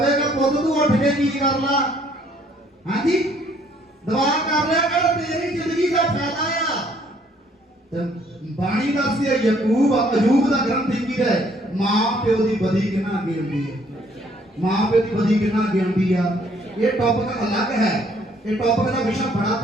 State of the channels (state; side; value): normal; both; correlation 0.64